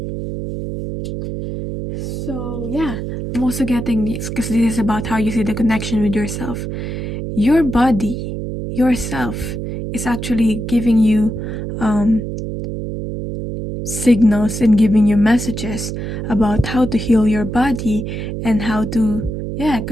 So yeah, I'm also getting this because this is about how you see the connection with yourself. Your body, yourself, is actually giving you signals and giving you messages about how to heal your body and how to, yeah,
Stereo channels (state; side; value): noise; right; hum, 5 dB below the sound